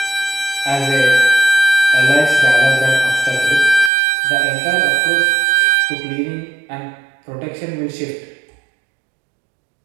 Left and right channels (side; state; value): left; drops out; at 3.9 s